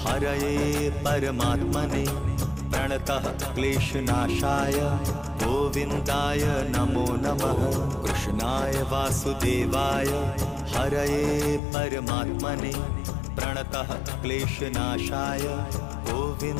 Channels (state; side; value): drops out; right; at 11.6 s